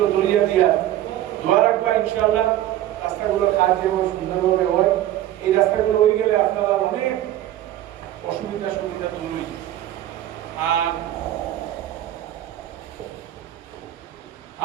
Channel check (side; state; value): left; quieter; 13.1 dB